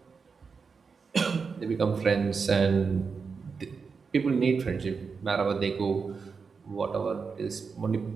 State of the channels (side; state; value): left; quieter; 5.3 dB